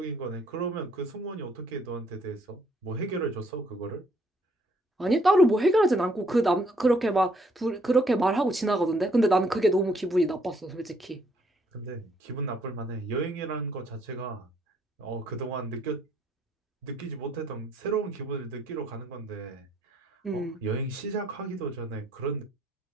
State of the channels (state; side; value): normal; both; correlation 0.67